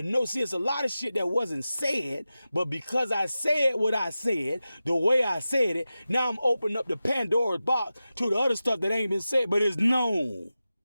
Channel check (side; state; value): both; inverted; correlation -0.93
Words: know, see, it's a lot of shit that wasn't said, but because I said what I said, the way I said it, now I'm opening up the Pandora's box to the other stuff that ain't been said, but it's known.